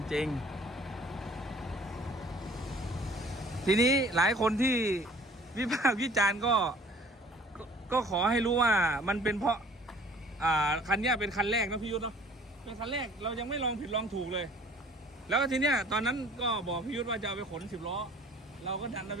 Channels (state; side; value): normal; both; correlation 0.52